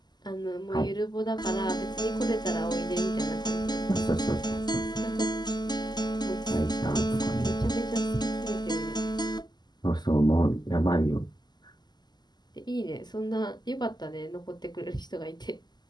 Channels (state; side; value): late; right; 0.21 ms